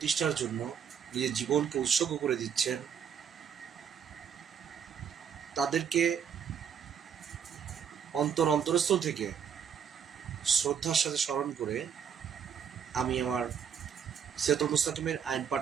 জন্য নিজের জীবনকে উৎসর্গ করে দিচ্ছেন, তাদেরকে অন্তরস্থল থেকে শ্রদ্ধার সাথে স্মরণ করে আমি আমার সিরাতুল মুস্তাকিমের আইন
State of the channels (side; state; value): left; quieter; 7.7 dB